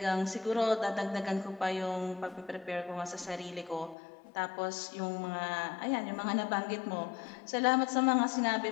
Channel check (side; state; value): right; drops out; at 4.0 s